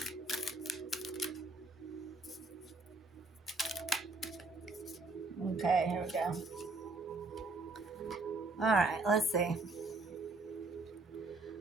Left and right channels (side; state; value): left; quieter; 3.3 dB